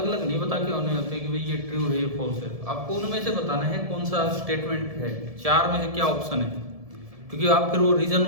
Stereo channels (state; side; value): late; left; 1.7 ms